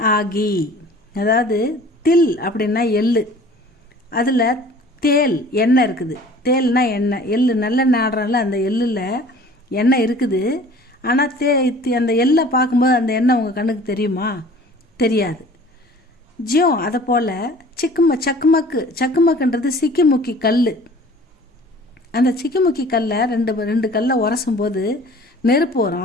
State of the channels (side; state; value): both; normal; correlation 0.48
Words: आगी. அதாவது தில் அப்படின்னா எள்ளு, அதில் தேல் எண்ணெய் இருக்குது. தேல்னா எண்ணெய், எள்ளு நல்ல நாடுறல அந்த எள்ளில் எண்ணெய் இருக்குது. ஆனால் அந்த எள்ளை பார்க்கும்போது அந்த எண்ணெய் உங்கள் கண்ணுக்கு தெரியுமா? தெரியாது. ஜியோ அதை போல் சக்குமக்குன்றது சிக்கிமுக்கி கல். அந்த சிக்கிமுக்கி கல்லை ரெண்டு கல்லை உரசும் போது நெருப்பு